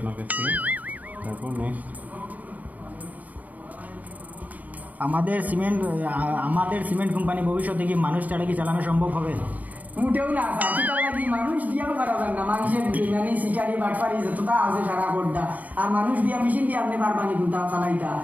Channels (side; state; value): left; late; 0.076 ms